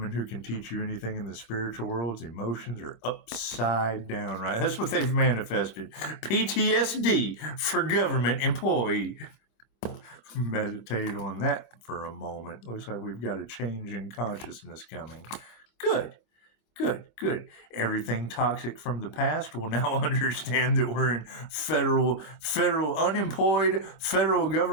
who can teach you anything in the spiritual world's emotions are upside down, right? That's what they've manifested. PTSD for government employee. Meditate on that for a moment. Looks like we've got a change in consciousness coming. Good. Everything toxic from the past will now understand that we're in federal unemployed federal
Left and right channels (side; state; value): right; late; 25 ms